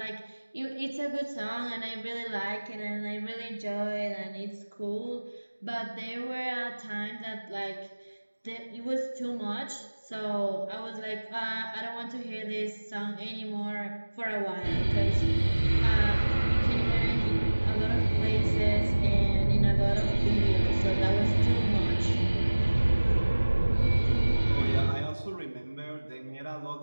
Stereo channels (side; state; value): both; inverted; correlation -1.00